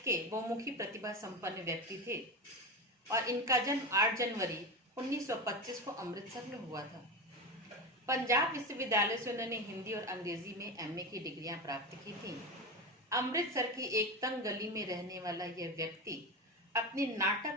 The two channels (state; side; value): normal; both; correlation 0.20